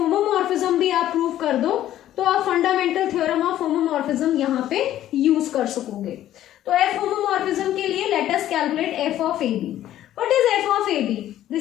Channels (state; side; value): quieter; right; 12.6 dB